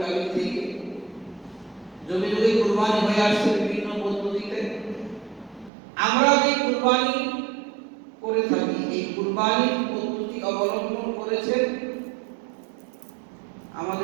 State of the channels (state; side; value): drops out; left; at 5.7 s